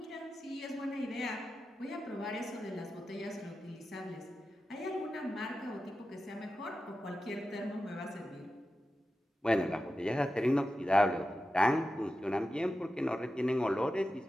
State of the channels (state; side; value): normal; both; correlation 0.92